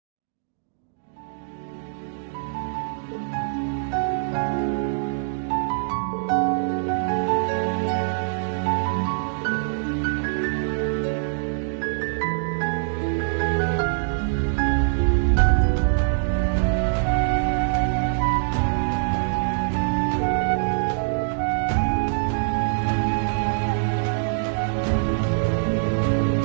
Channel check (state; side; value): silent; left; digital silence